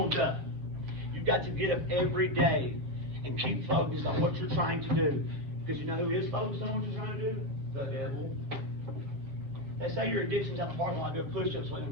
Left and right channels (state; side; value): late; left; 8.0 ms